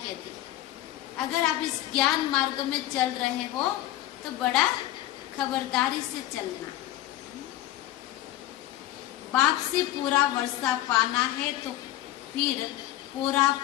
अगर आप इस ज्ञान मार्ग में चल रहे हो तो बड़ा खबरदारी से चलना। बाप से पूरा वर्षा पाना है तो फिर पूरा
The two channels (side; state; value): right; quieter; 14.5 dB